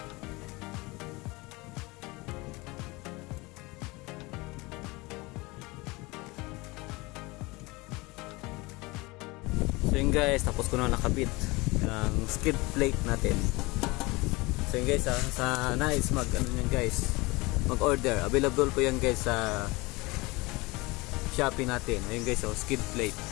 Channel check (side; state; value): right; quieter; 23.7 dB